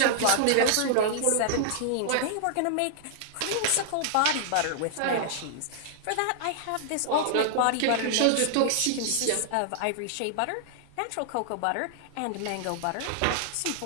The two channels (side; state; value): both; different; correlation -0.01